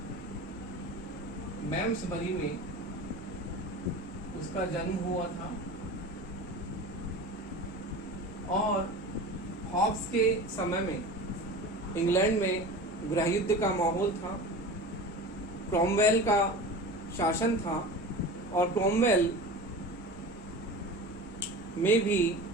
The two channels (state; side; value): noise; right; hum, 22 dB below the sound